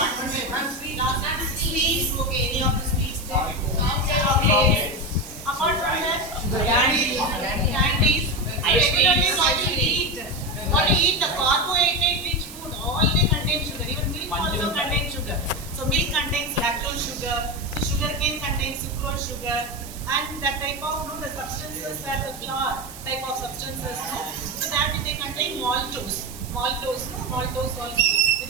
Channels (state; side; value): noise; right; hiss, 15 dB below the sound